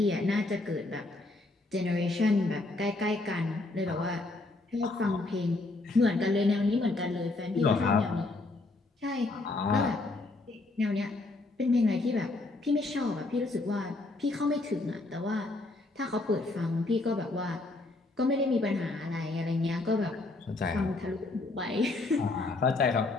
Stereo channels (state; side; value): quieter; right; 3.1 dB